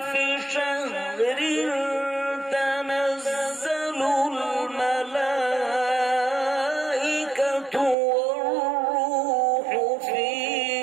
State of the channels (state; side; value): drops out; left; at 8.0 s